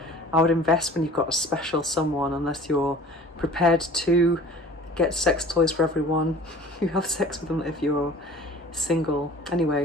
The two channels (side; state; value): both; normal; correlation 0.45